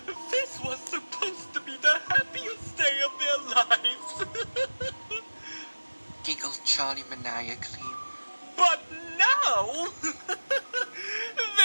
This was supposed to be the happiest day of their lives. Giggled Charlie maniacally. But now,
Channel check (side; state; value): both; inverted; correlation -1.00